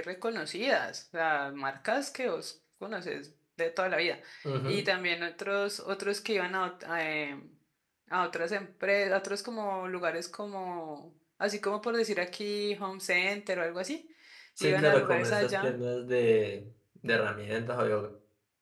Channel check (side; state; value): both; identical; correlation 1.00